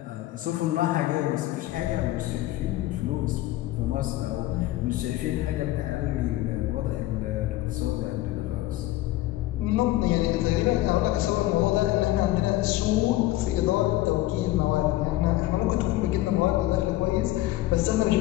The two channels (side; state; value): right; quieter; 16.2 dB